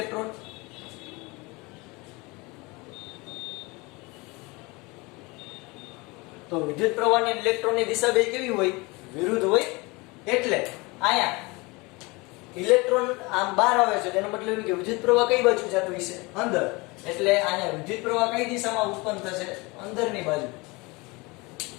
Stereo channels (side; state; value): right; quieter; 25.3 dB